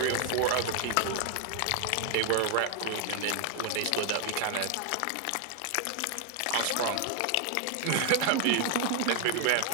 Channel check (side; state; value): both; different; correlation 0.00